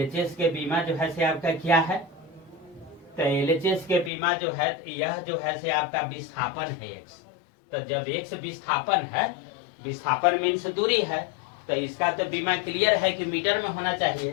के बीमा जो है से आपका क्या है, तो LHS के बीमा जो है यह जो है से आपका विस्थापन है x। तो जब x विस्थापन है, विस्थापन मीन्स दूरी है, तो इसका तो बीमा क्लियर है कि मीटर में होना चाहिए।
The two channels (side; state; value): right; drops out; at 4.1 s